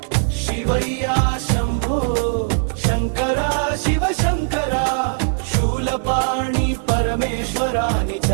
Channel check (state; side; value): silent; left; 59 dB below the other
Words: శివయ్యా శంభో శంకరా శివ శంకరా శూలపాణి పరమేశ్వరాని